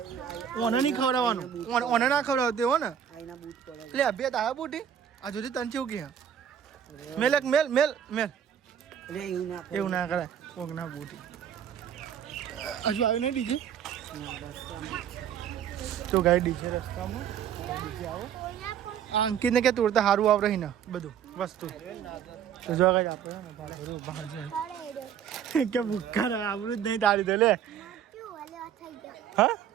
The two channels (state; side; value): quieter; left; 8.9 dB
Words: ઓને નહીં ખવડાવવાનું ઓને ના ખવડાવते हो ને એટલે અભ્યાસ આવ્યા બુટી આ સુધી તને કેવું કે મેલ એવું ના કરાય કોક ના બુટી હજુ આવ્યું નહીં ડીજે તો ગાડી ડીજે રસ્તામાં ડીજે આવો અંકિતને કે તોડતા સારું આવડે ને બધું વસ્તુ તો જો કઈ આપણે બહાર જાય કે ભૂખા આવડું જ નહીં તારી તો લે હા